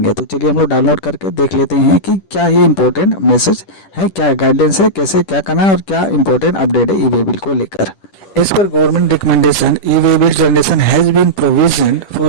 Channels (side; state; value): right; late; 10 ms